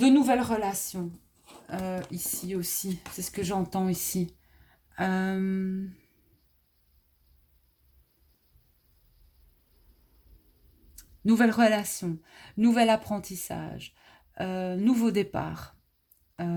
nouvelles relations ici aussi. C'est ce que j'entends ici. Nouvelles relations, nouvel apprentissage, nouveau départ. Ouais.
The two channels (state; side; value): identical; both; correlation 1.00